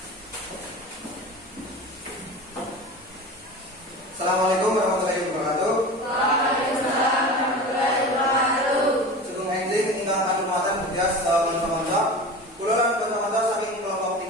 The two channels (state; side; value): normal; both; correlation 0.33